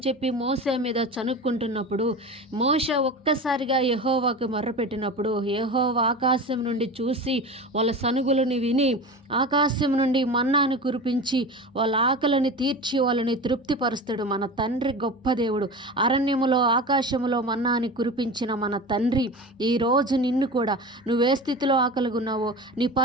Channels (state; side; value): normal; both; correlation 0.31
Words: చెప్పి మోషే మీద చనుక్కుంటున్నప్పుడు మోషే ఒక్కసారిగా యెహోవాకు మొర్రపెట్టినప్పుడు యెహోవా ఆకాశం నుండి చూసి వాళ్ళ సనుగులని విని ఆకాశం నుండి మన్నాను కురిపించి వాళ్ళ ఆకలిని తీర్చి వాళ్ళని తృప్తిపరుస్తాడు. మన తండ్రి గొప్ప దేవుడు. అరణ్యములో ఆకాశములో మన్నాని కురిపించిన మన తండ్రి ఈరోజు నిన్ను కూడా నువ్వే స్థితిలో ఆకలిగా ఉన్నావో, నీ